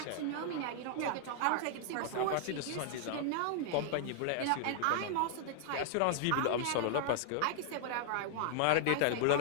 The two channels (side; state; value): both; different; correlation 0.00